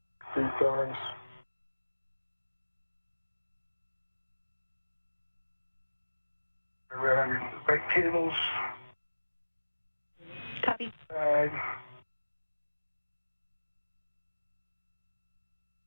Three turns. Around your right cables. Copy. Turns.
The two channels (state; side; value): inverted; both; correlation -1.00